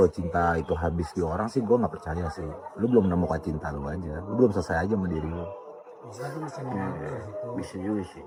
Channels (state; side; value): identical; both; correlation 1.00